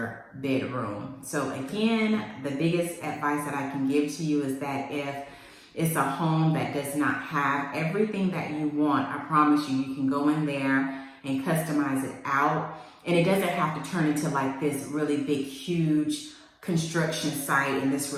bedroom. So again, the biggest advice that I can give to you is that if it's a home that does not have everything that you want, I promise you, you can go in there and customize it out. And it doesn't have to turn into like this really big, huge construction site and this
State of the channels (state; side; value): identical; both; correlation 1.00